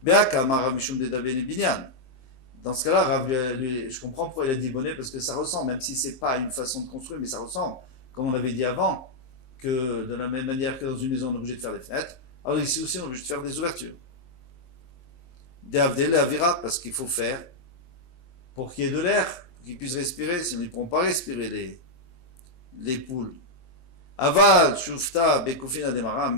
Dans ce cas-là, Rav, je comprends pourquoi il a dit bonnet, parce que ça ressemble, même si c'est pas une façon de construire, mais ça ressemble, comme on avait dit avant, que de la même manière que dans une maison on est obligé de faire des fenêtres, alors ici aussi on est obligé de faire des ouvertures. Des avdel et avira, parce qu'il faut faire pour qu'il y ait de l'air, pour qu'ils puissent respirer, sinon ils ne pourront pas respirer les poules. Aval, shufta, bekufina demara,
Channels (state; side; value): late; right; 23 ms